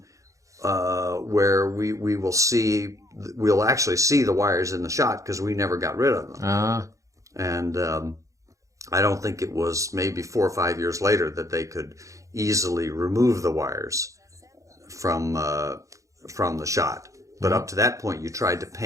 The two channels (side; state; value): left; late; 0.15 ms